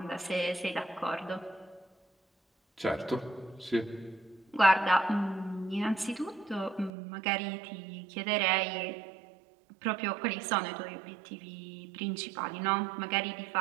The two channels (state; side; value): drops out; left; at 6.9 s